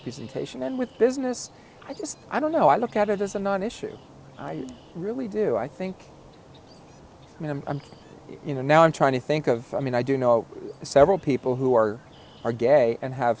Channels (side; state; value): both; identical; correlation 1.00